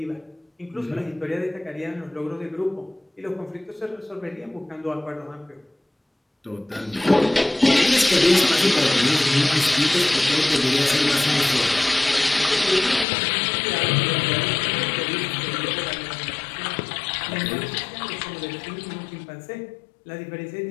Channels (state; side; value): drops out; right; at 13.1 s